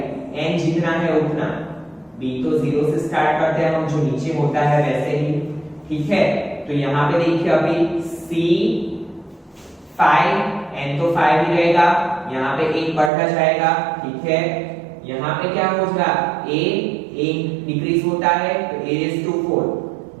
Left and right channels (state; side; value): drops out; left; at 13.1 s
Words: n जितना है उतना, b तो 0 से स्टार्ट करते हैं हम, जो नीचे होता है वैसे ही, ठीक है। तो यहाँ पे देखिए अभी C5 n तो 5 ही रहेगा, यहाँ पे एक बढ़ता जाएगा, ठीक है। यहाँ पे क्या होगा a डिक्रीज होता है तो a raised to 4,